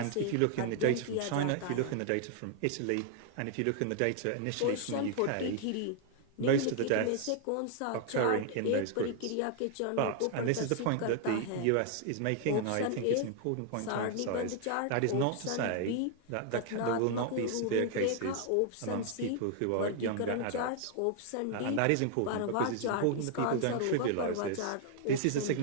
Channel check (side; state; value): both; different; correlation 0.00